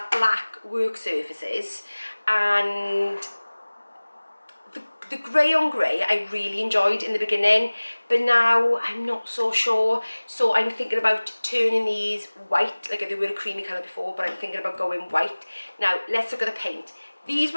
black work surfaces, and the grey on grey I really enjoyed in the beginning, but now I'm not so sure. So I'm thinking about turning these white, like they were a creamy colour before, but I'm thinking about going white. Now let's look at the paint. These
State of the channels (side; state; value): both; inverted; correlation -1.00